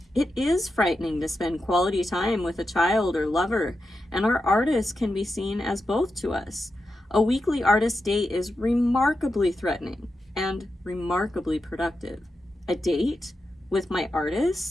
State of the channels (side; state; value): both; normal; correlation 0.89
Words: It is frightening to spend quality time with a child or lover, and our artists can be seen as both to us. A weekly artist date is remarkably threatening and remarkably productive. A date with my